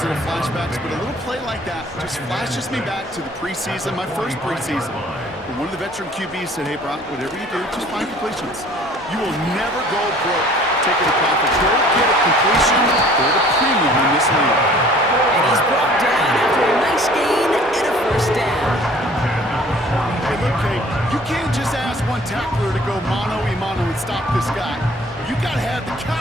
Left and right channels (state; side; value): normal; both; correlation 0.52